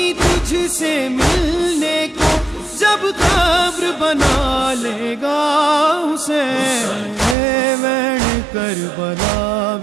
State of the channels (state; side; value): drops out; left; at 7.4 s